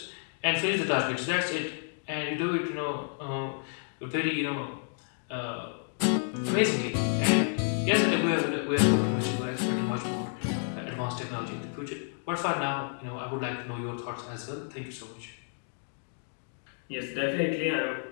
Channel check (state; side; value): silent; right; digital silence